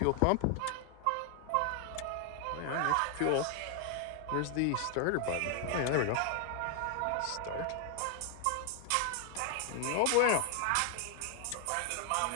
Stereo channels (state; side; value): different; both; correlation 0.00